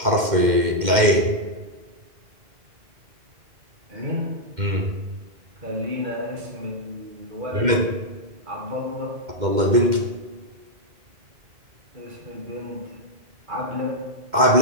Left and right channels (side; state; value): left; late; 2.1 ms